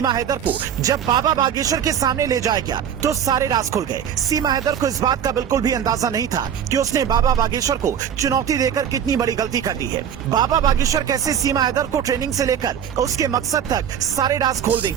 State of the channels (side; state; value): left; quieter; 8.7 dB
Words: हैदर को जब बाबा बागेश्वर के सामने ले जाया गया तो सारे राज खुल गए। सीमा हैदर को इस बात का बिल्कुल भी अंदाजा नहीं था कि उसने बाबा बागेश्वर को चुनौती देकर कितनी बड़ी गलती कर दी है। बाबा बागेश्वर कैसे सीमा हैदर को ट्रेनिंग से लेकर उसके मकसद तक सारे राज खोल